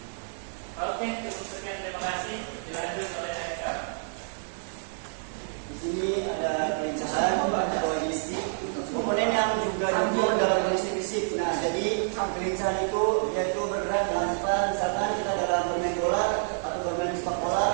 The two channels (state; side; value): silent; left; 59 dB below the other